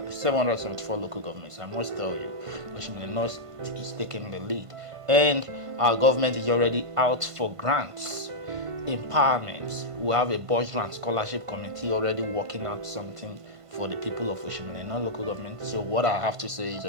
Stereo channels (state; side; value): late; left; 1.5 ms